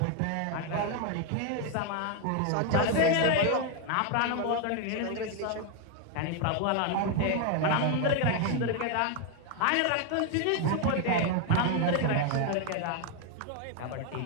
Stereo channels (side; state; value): both; different; correlation 0.01